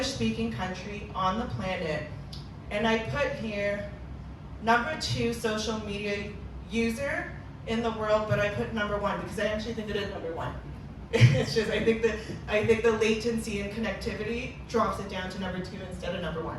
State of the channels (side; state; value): both; identical; correlation 1.00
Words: country on the planet. And I put here number 2 social media user in the world, but I put number 1 because I actually think it is number 1. It's just I think the latency and connectivity drops it down to number 2 instead of number